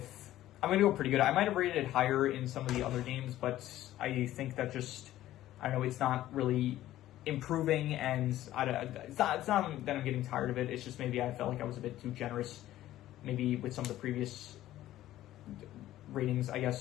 I'm going to go pretty good. I might have rated it higher in some of the other games, but I think that I don't know, it's not really improving, and it's not that I'm getting tired of it. It's just maybe I felt like I was a bit too generous, maybe with some of the previous ratings, I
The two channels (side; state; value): right; quieter; 14.1 dB